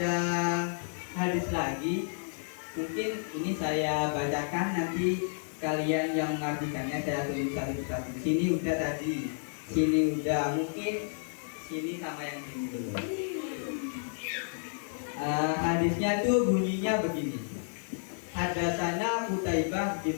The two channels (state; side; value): silent; right; 57 dB below the other